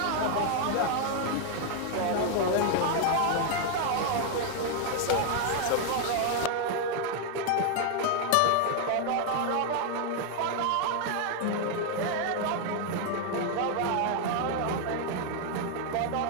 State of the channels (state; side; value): different; both; correlation 0.00